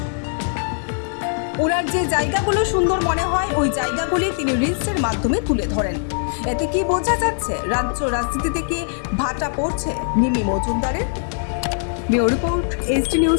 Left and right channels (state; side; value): silent; right; 65 dB below the other